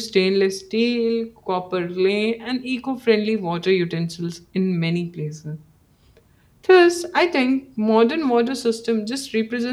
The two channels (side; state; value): both; identical; correlation 1.00